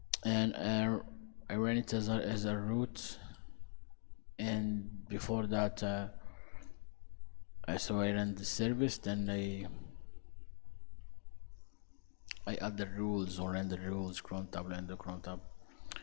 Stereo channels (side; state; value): right; silent; digital silence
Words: and I ran it as a root, and before that so I ran the service, then I add the rules or render rules, cron tab, Lando, cron tab.